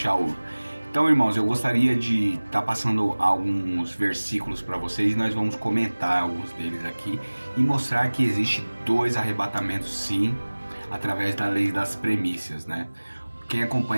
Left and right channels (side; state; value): both; inverted; correlation -1.00